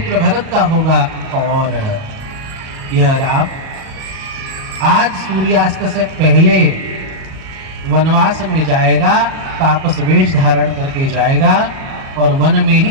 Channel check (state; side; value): late; left; 37 ms